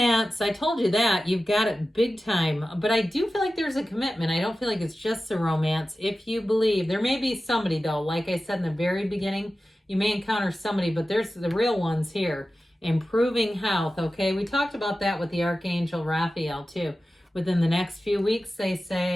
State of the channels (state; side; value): normal; both; correlation 0.95